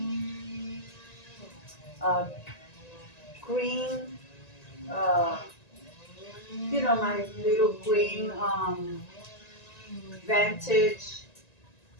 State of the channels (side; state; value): right; late; 1.9 ms